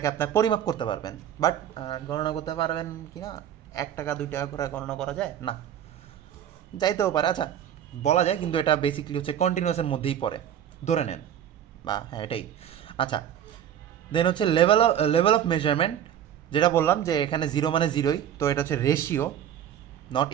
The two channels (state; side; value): quieter; left; 9.9 dB